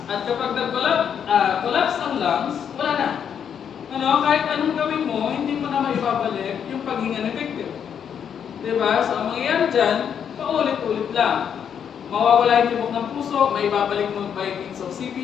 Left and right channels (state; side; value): quieter; right; 8.1 dB